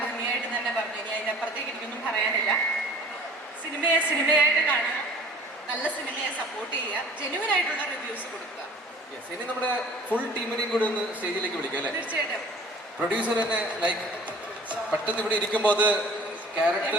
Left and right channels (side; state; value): both; normal; correlation 0.47